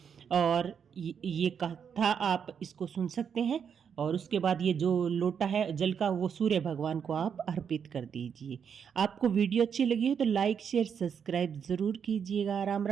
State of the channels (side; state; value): left; quieter; 7.3 dB